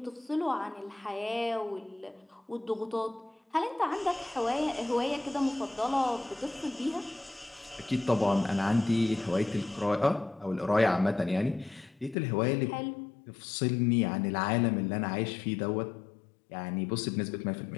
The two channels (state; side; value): drops out; right; at 12.2 s